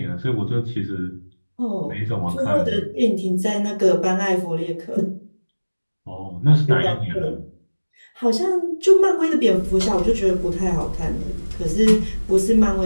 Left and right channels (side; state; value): both; inverted; correlation -1.00